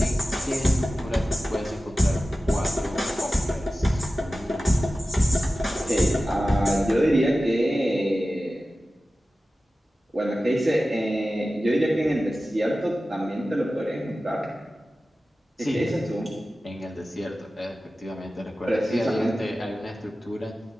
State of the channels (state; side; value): normal; both; correlation 0.95